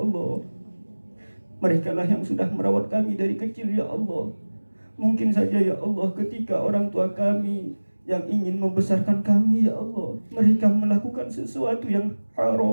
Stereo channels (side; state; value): both; inverted; correlation -1.00